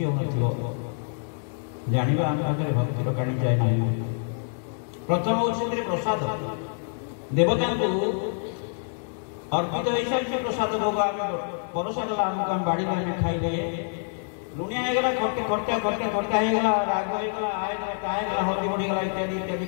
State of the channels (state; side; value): silent; right; digital silence